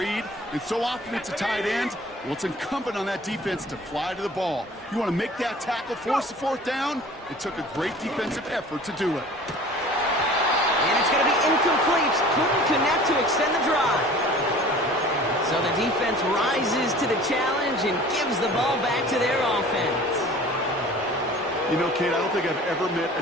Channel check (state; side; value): normal; both; correlation 0.45